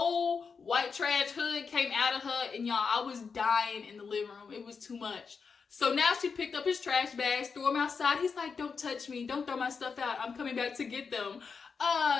white trash hood came out of her, and y'all, I was dying in the living room. It was too much. So now she picked up his trash bags, threw them outside. He's like, don't touch me. Don't throw my stuff out. I'm coming back to get them.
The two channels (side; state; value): right; quieter; 5.5 dB